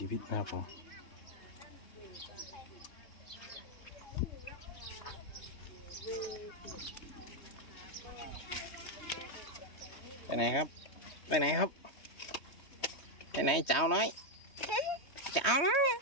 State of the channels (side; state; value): right; late; 3.2 ms